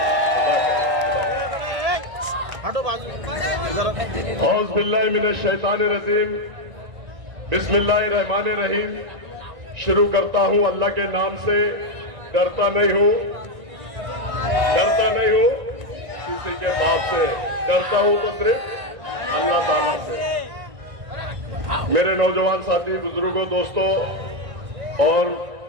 औज़ बिल्लाहि मिनश शैतानिर रजीम, बिस्मिल्लाहिर रहमानिर रहीम। शुरू करता हूं अल्लाह के नाम से। डरता नहीं हूं, डरता नहीं हूं किसी के बाप से, डरता हूं तो सिर्फ अल्लाह ताला से। मेरे नौजवान साथी, बुजुर्गों, दोस्तों और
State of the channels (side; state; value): left; late; 1.6 ms